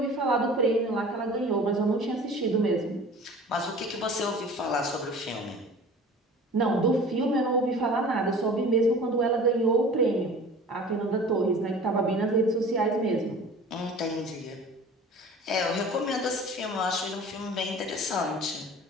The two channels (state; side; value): normal; both; correlation 0.42